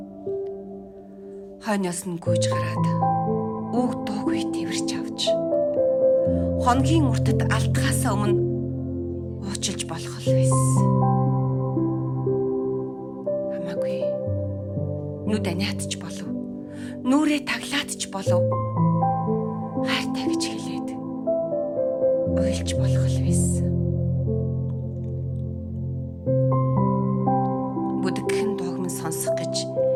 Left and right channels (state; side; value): identical; both; correlation 1.00